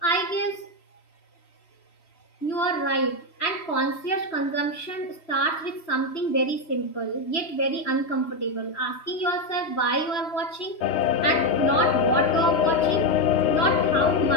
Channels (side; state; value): right; late; 3.0 ms